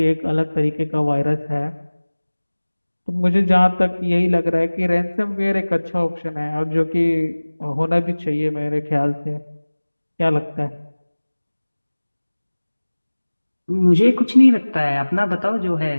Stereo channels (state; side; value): inverted; both; correlation -1.00